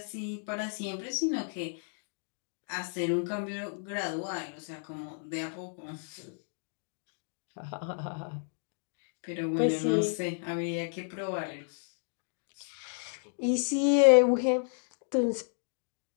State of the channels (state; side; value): silent; right; digital silence